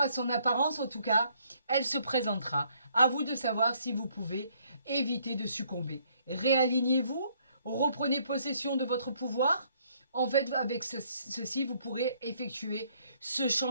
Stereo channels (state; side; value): inverted; both; correlation -0.66